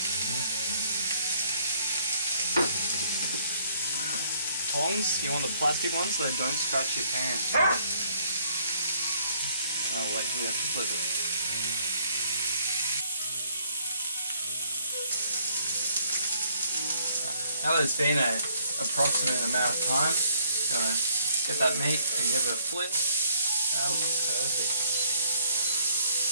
Tongs, you want the plastic ones so they don't scratch your pan. Oh wait, we have to flip it. Now that it's been an approximate amount of time, gonna get that meat and give it a flip. That looks perfect.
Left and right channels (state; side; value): inverted; both; correlation -0.65